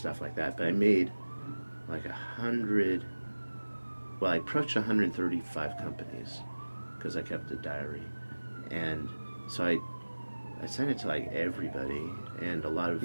like that. But I made like 100, well, I approached 135 companies because I kept a diary. And so I sent it to, like, everybody, and a lot of...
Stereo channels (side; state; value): both; inverted; correlation -1.00